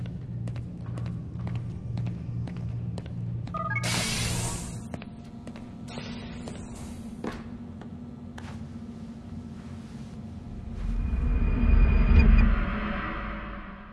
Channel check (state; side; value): identical; both; correlation 1.00